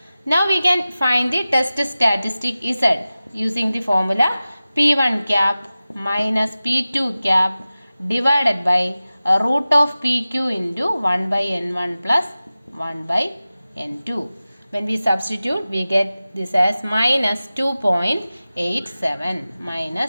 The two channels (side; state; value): both; inverted; correlation -0.96